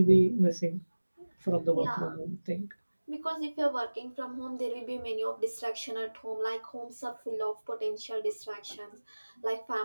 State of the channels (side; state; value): both; inverted; correlation -1.00